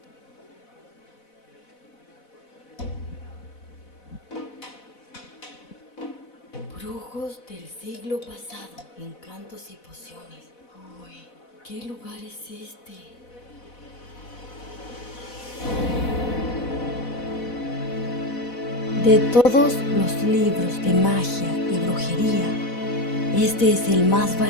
Brujos del siglo pasado, encantos y pociones. Uy, ¿qué lugar es este? De todos los libros de magia y brujería, este es el más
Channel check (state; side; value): late; right; 4.1 ms